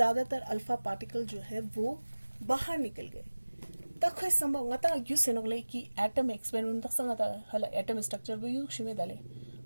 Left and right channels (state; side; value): inverted; both; correlation -1.00